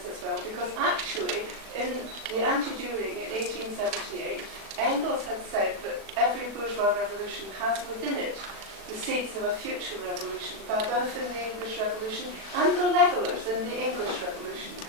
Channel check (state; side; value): late; left; 36 ms